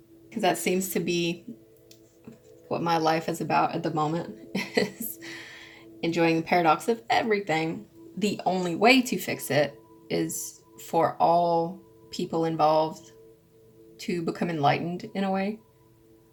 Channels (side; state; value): both; identical; correlation 1.00